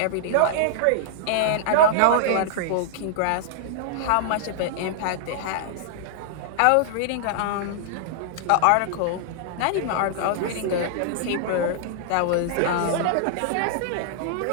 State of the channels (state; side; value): different; both; correlation -0.01